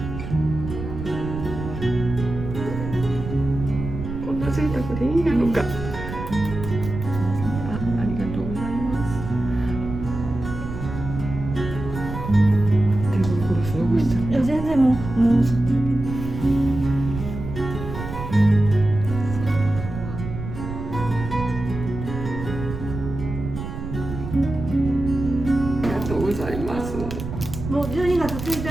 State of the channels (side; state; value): right; noise; rumble, 7 dB below the sound